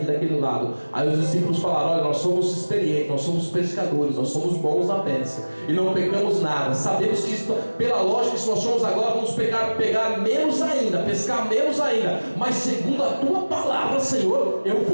daquele lado. Aí os discípulos falaram: olha, nós somos experientes, nós somos pescadores, nós somos bons na pesca e não pegamos nada. Sabemos que isso, pela lógica, se nós somos agora, vamos pegar menos ainda, pescar menos ainda. Mas segundo a tua palavra, Senhor, eu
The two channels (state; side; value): inverted; both; correlation -1.00